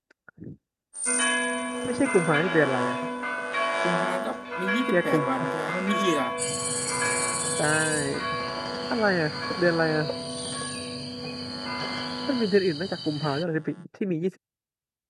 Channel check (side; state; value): both; identical; correlation 1.00